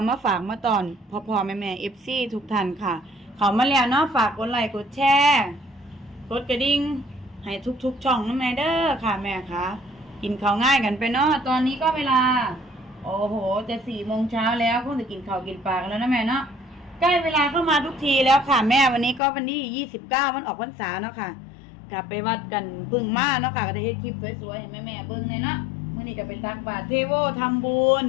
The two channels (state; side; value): drops out; right; at 19.2 s